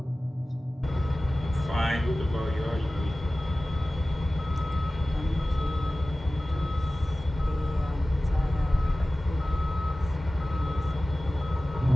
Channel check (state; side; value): normal; both; correlation 0.96